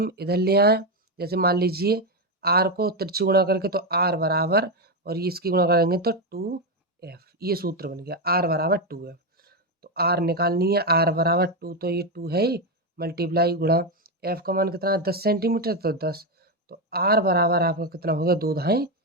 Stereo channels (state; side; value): normal; both; correlation 0.08